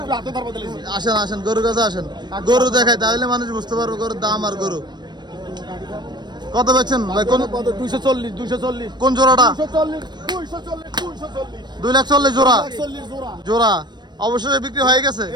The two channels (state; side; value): late; left; 0.21 ms